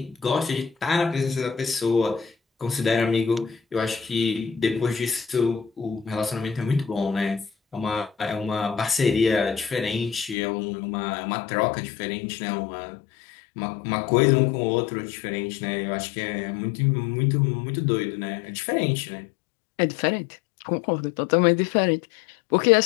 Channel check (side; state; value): right; drops out; at 10.4 s